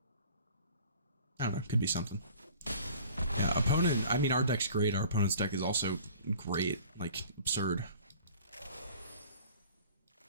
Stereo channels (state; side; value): inverted; both; correlation -0.47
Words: I don't know, could be something. Yeah, opponent, I mean, our deck's great. Our opponent's deck is also great, like, absurd.